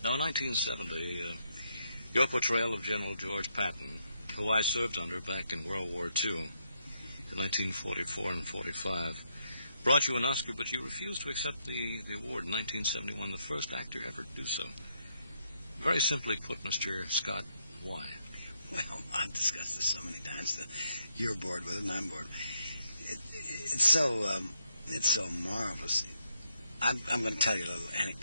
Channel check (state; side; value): inverted; both; correlation -0.77